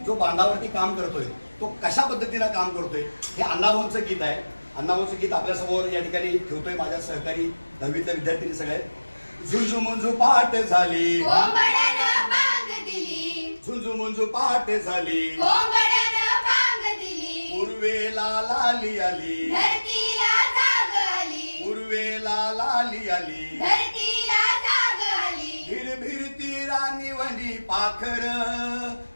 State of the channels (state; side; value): inverted; both; correlation -1.00